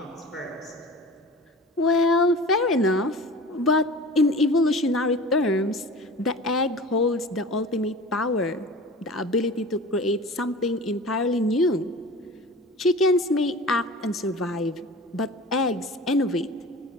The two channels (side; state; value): both; normal; correlation 0.38